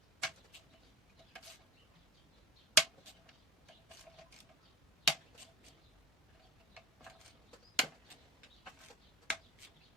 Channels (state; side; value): normal; both; correlation 0.33